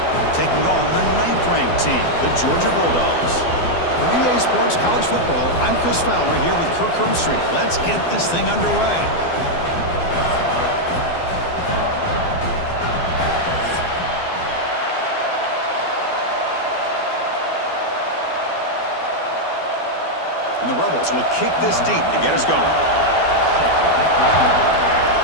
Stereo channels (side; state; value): right; late; 12 ms